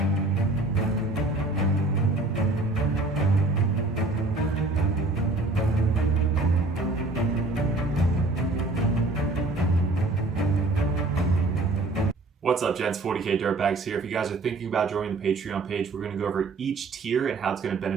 What's up, gents? 40k Dirtbags here. If you guys are thinking about joining the Patreon page, we're going to go over each tier and how it's going to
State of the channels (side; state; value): left; quieter; 3.1 dB